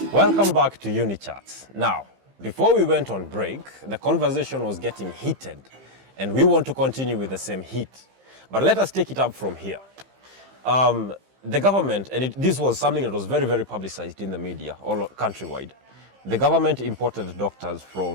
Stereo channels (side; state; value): left; late; 15 ms